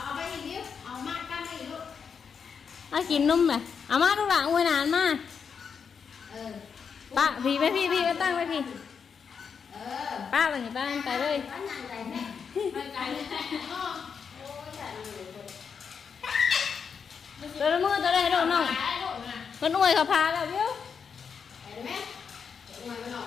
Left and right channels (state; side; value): quieter; right; 6.4 dB